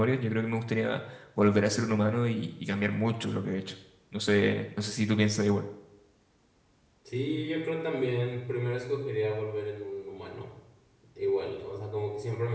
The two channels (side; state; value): both; identical; correlation 1.00